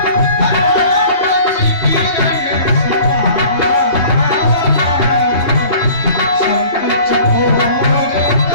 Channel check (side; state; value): right; late; 2.7 ms